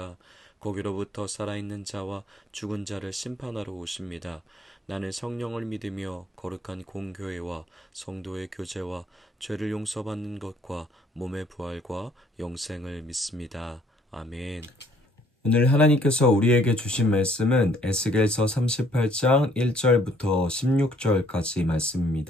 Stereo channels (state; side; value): normal; both; correlation 0.63